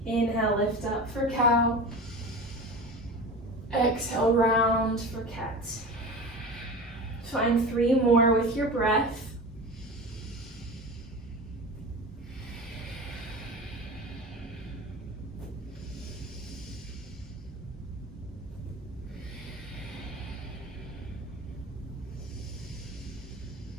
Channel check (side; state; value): both; normal; correlation 0.32